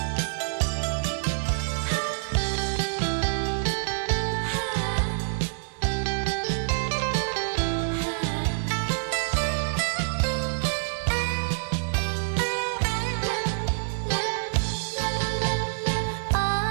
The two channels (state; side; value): silent; left; 60 dB below the other